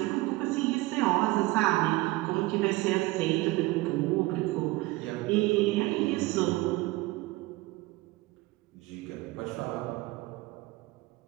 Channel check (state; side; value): quieter; left; 20.6 dB